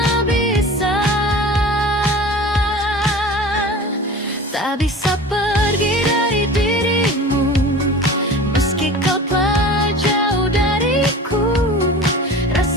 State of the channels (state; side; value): normal; both; correlation 0.37